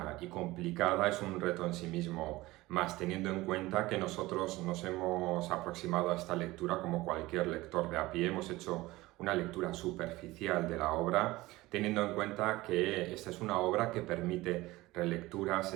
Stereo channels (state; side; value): quieter; left; 19.3 dB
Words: y complicada es un reto en sí mismo, más teniendo en cuenta que nosotros nos hemos aproximado a esta lectura como cualquier lector de a pie. Hemos hecho una lectura superficial de la obra, teniendo en cuenta que esta es una obra que permite relecturas,